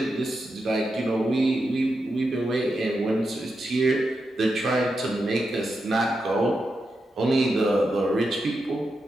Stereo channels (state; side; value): normal; both; correlation 0.87